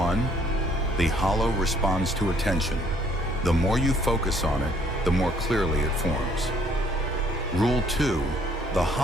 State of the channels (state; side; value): normal; both; correlation 0.63